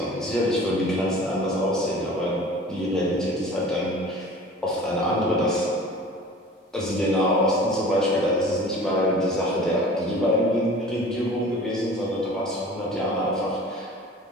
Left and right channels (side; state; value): both; normal; correlation 0.43